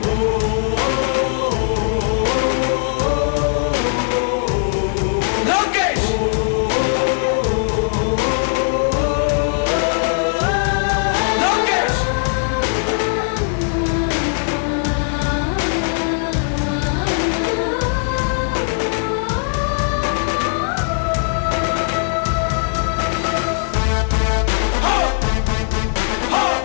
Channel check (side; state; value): right; silent; 61 dB below the other